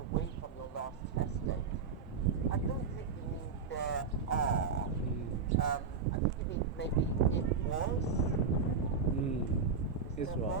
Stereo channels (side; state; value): left; quieter; 5.5 dB